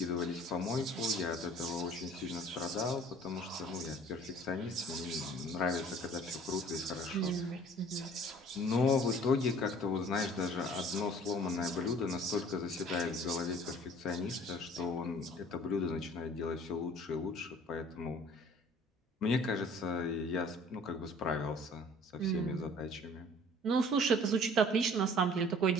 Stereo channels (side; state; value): both; normal; correlation 0.51